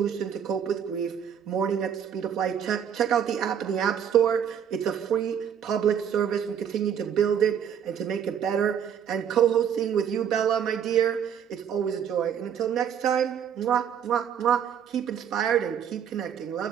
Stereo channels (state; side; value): quieter; left; 8.5 dB